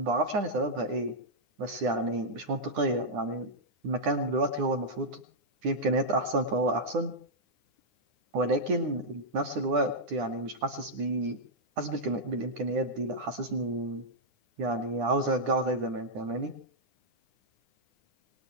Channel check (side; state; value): left; late; 9.8 ms